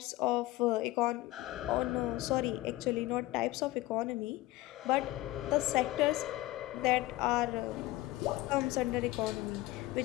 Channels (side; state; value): right; quieter; 17.8 dB